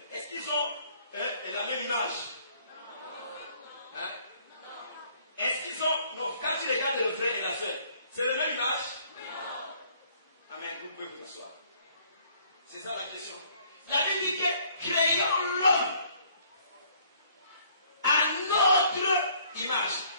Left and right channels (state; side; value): inverted; both; correlation -0.61